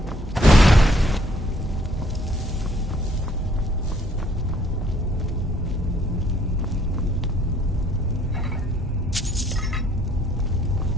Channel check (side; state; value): both; normal; correlation 0.64